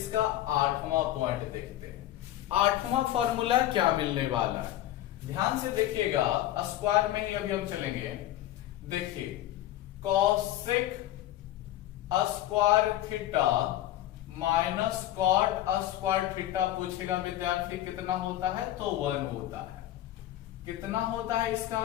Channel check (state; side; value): quieter; right; 13.7 dB